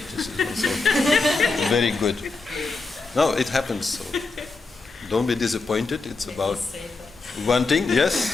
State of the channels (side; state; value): right; quieter; 3.9 dB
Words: This is also very good. No, it happens. So don't be disappointed. It's about wanting.